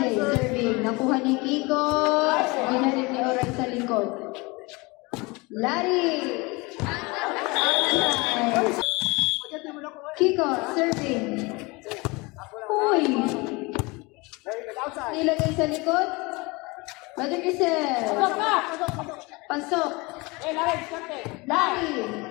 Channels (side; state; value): right; quieter; 25.3 dB